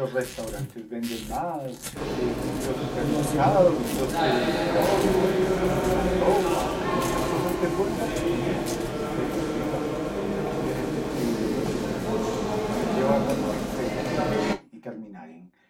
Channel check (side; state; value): both; identical; correlation 1.00